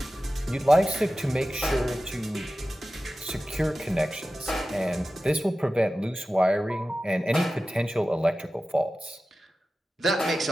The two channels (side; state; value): both; normal; correlation 0.94